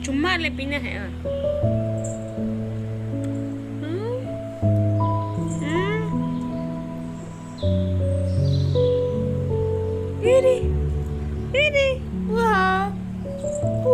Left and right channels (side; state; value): both; identical; correlation 1.00